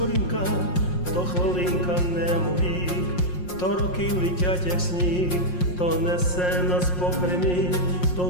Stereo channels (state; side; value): late; right; 5.6 ms